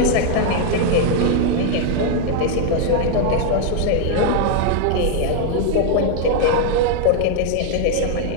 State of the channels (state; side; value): different; both; correlation 0.00